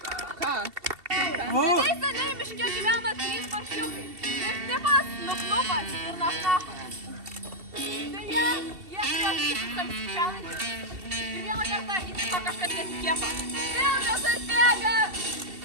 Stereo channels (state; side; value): late; left; 2.7 ms